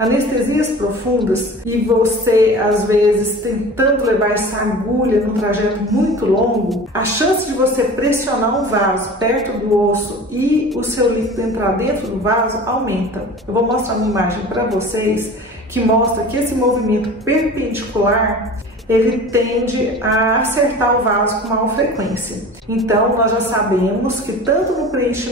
profundas e você, às vezes, tentando levar essa agulha num trajeto muito longo, a chance de você pressionar um vaso perto do osso e o seu líquido entrar dentro do vaso aumenta. Eu vou mostrar uma imagem para vocês que mostra que esse movimento perpendicular ele tende a acertar o vaso com maior frequência. Então, nós já sabemos que tanto no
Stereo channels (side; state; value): both; normal; correlation 0.39